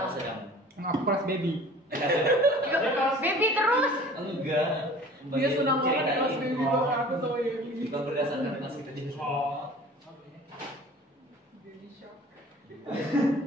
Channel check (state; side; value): normal; both; correlation 0.45